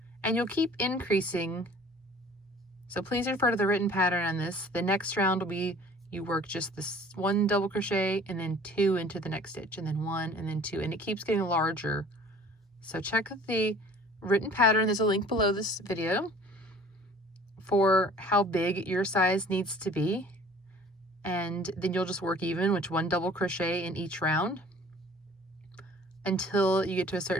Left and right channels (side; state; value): both; normal; correlation 0.50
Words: and you'll keep increasing. So please refer to the written pattern on this. The next round will be you work just this 1 double crochet and then 2 into the next stitch, and then 1 and then 2, and it keeps getting larger. So check the written pattern. There's a link below this video for how big your size needs to be, and then you'll just work even with 1 double crochet in each round until you get to a